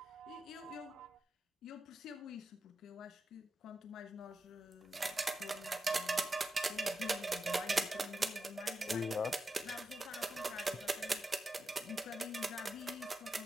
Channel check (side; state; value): both; normal; correlation 0.88